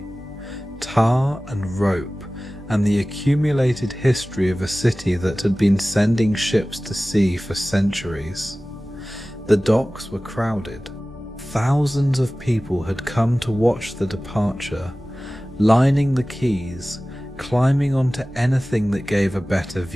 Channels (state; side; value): normal; both; correlation 0.97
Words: tar and rope, and the accumulated history of a city that had been sending ships to sea for centuries. The docks were crowded. Thousands of people had come to watch the departure, lining the quays, climbing onto anything that gave a better